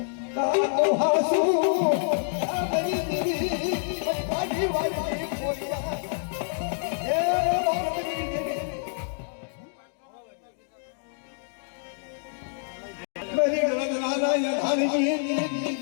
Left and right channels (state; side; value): silent; right; digital silence